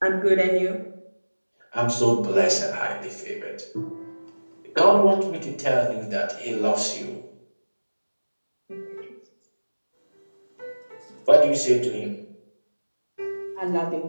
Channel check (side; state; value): both; inverted; correlation -1.00